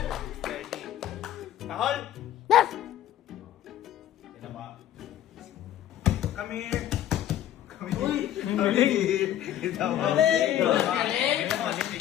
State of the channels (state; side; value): quieter; right; 11.8 dB